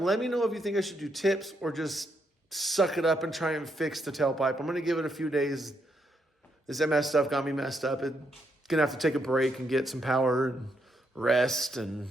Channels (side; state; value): both; normal; correlation 0.78